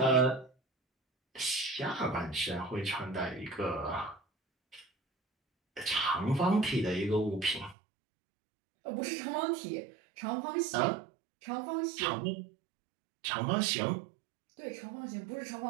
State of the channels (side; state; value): left; drops out; at 7.8 s